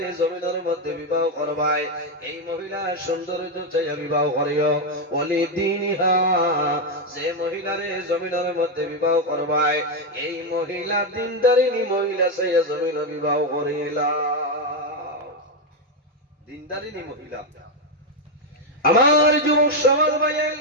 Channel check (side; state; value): both; normal; correlation 0.05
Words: জমিনের মধ্যে বিবাহ করবাই, এই মহিলা সৌন্দর্য চাইয়া বিবাহ করিও। বলি দিনহা, যে মহিলার জমিনের মধ্যে বিবাহ করবাই, এই মহিলা দিনদারিনী মহিলা চাইয়া জমিন বিবাহ করিলা। দিনদারিনী মহিলা। আমার যুবক সমাজ ভাই,